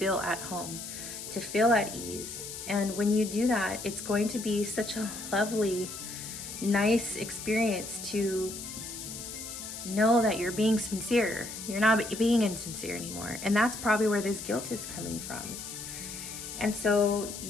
at home, to feel at ease. And when you do that, it's going to be such a lovely, nice experience to know that you're being sincere. You're not being insincere anymore. And that's probably where this guilt is coming from. And so,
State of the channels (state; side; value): noise; left; hiss, 9 dB below the sound